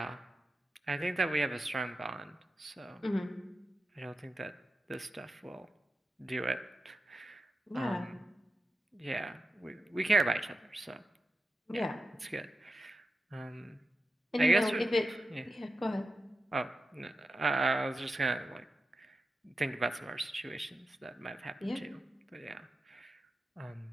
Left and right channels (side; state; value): both; normal; correlation 0.91